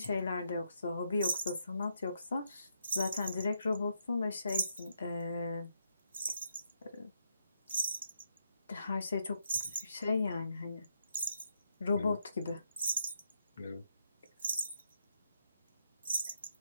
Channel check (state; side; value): inverted; both; correlation -0.78